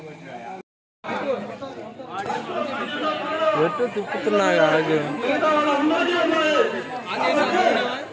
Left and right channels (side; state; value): both; identical; correlation 1.00